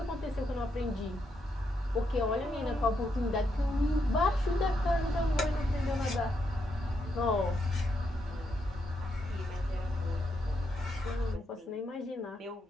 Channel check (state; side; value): normal; both; correlation 0.80